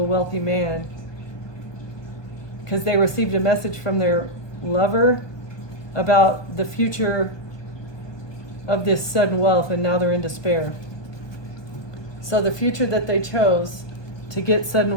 wealthy man because they received a message from their lover about the future of this sudden wealth, and now they're in despair. So the future that they chose to get sudden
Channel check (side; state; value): right; late; 1.2 ms